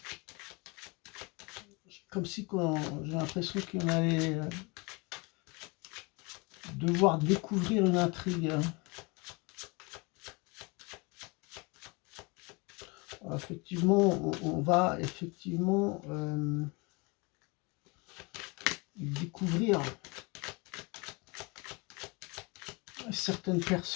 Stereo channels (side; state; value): right; quieter; 28.3 dB